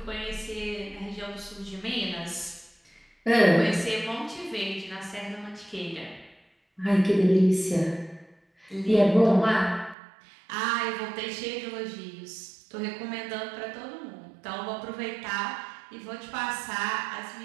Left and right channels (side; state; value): left; drops out; at 10.0 s